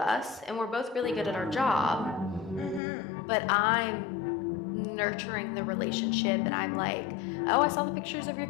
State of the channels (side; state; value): right; drops out; at 2.8 s